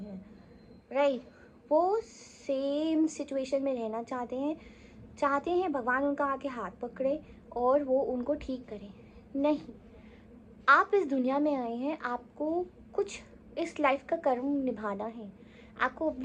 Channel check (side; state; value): both; identical; correlation 1.00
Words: हैं, राइट। वो सेम सिचुएशन में रहना चाहते हैं भगवान उनका आके हाथ पकड़े और वो उनको ठीक करें। नहीं, आप इस दुनिया में आए हैं, आपको कुछ इस लाइफ का कर्म निभाना है। आपको